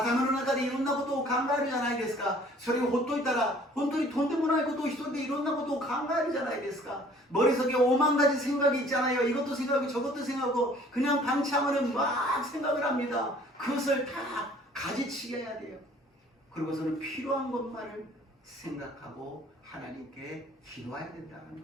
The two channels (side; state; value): both; normal; correlation 0.54